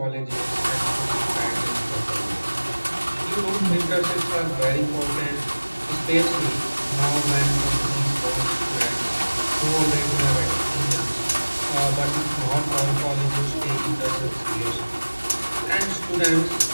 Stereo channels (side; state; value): both; inverted; correlation -1.00